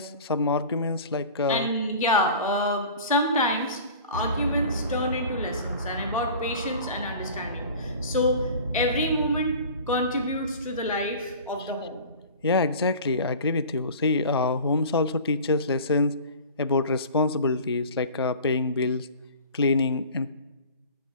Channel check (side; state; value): both; inverted; correlation -0.40